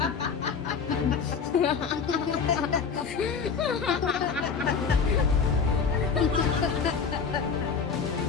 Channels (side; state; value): right; quieter; 5.9 dB